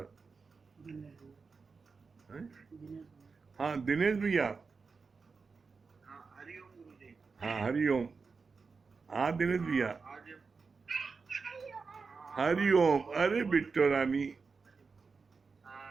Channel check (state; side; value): quieter; left; 4.8 dB